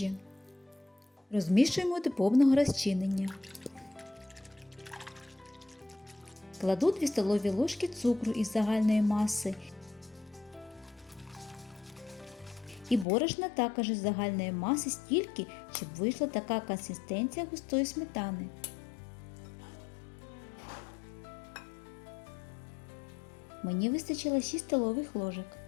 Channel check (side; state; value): right; drops out; at 13.1 s